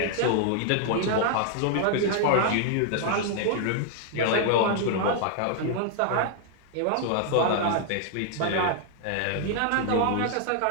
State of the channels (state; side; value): different; both; correlation 0.00